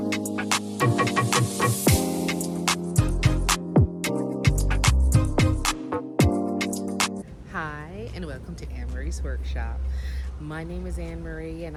and welcome to Anmaree's Workshop. My name is Anmaree, and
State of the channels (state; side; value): identical; both; correlation 1.00